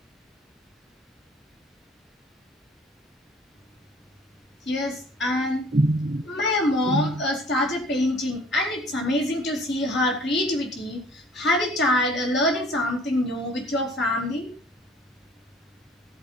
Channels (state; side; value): normal; both; correlation 0.53